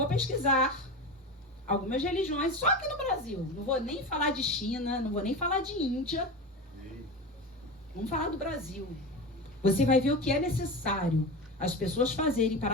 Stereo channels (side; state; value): both; normal; correlation 0.25